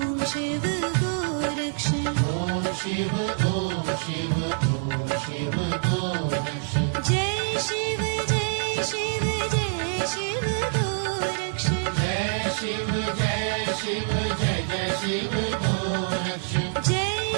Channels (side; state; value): left; silent; digital silence